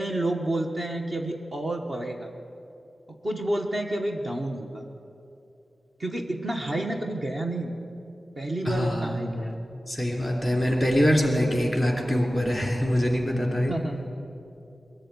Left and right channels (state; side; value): normal; both; correlation 0.94